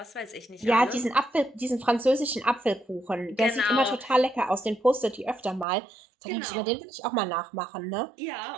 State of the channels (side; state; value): left; drops out; at 5.7 s